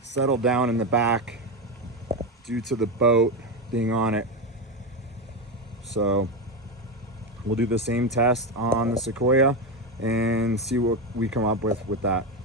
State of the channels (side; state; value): both; normal; correlation 0.13